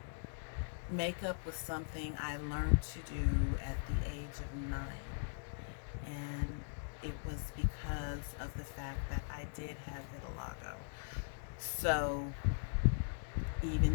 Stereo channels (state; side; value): silent; right; digital silence